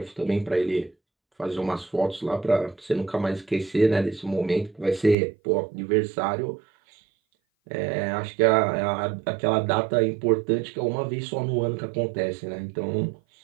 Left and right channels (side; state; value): left; drops out; at 5.2 s